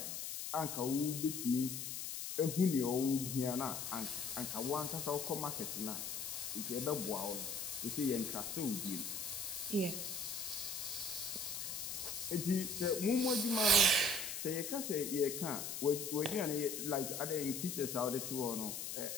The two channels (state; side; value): noise; left; hiss, 5 dB below the sound